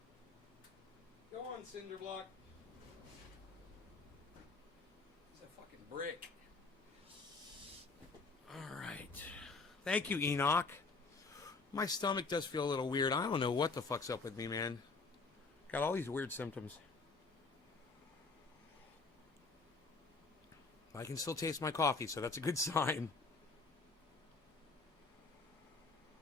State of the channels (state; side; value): quieter; right; 4.1 dB